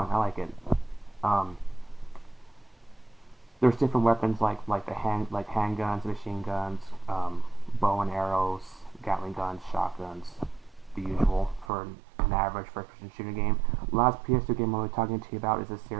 I like it. There's different weapons like handguns, machine guns, bow and arrows, Gatling guns, shotguns, the usual for an average first-person shooter game. Last PS2 game I'll be talking to you about is a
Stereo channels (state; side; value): drops out; left; at 11.7 s